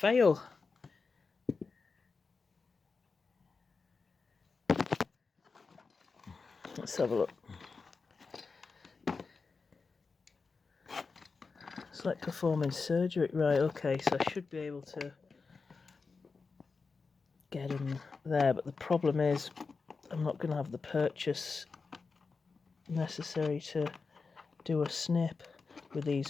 Let's have a look. It's like performing surgery. Right, okay, so I should be able to get him there, but the problem is I'm not going to have the purchase necessary to do a snip with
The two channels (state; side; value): quieter; right; 4.5 dB